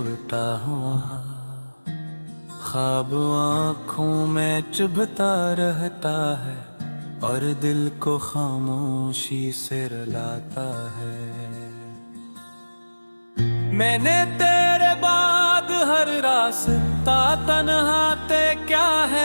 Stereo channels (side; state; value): both; inverted; correlation -1.00